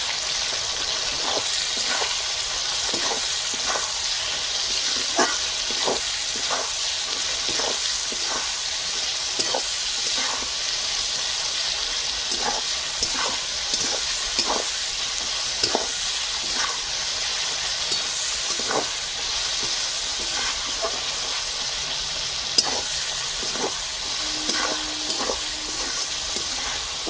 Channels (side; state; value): both; identical; correlation 1.00